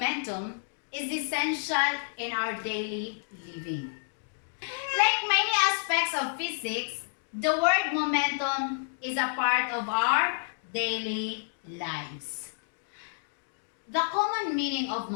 is essential in our daily living. Like many aspects of physics, the word momentum is a part of our daily lives. The common meaning of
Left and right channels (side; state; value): right; silent; digital silence